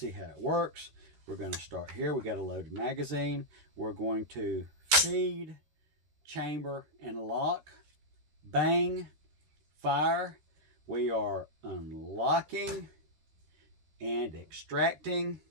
how it works, we're going to start here. We got a loaded magazine. We're going to feed, chamber, and lock. Bang, fire. We are unlocking and extracting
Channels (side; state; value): left; late; 13 ms